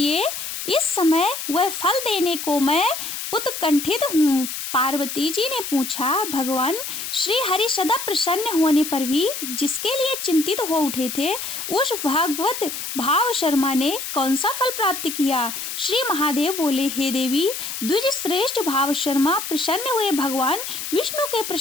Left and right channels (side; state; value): left; noise; hiss, 6 dB below the sound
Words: इस समय वह फल देने को मैं उत्कंठित हूँ। पार्वती जी ने पूछा, भगवान श्री हरि सदा प्रसन्न होने पर भी जिसके लिए चिंतित हो उठे थे, उस भागवत भाव शर्मा ने कौन सा फल प्राप्त किया? श्री महादेव बोले, हे देवी, द्विज श्रेष्ठ भाव शर्मा प्रसन्न हुए भगवान विष्णु के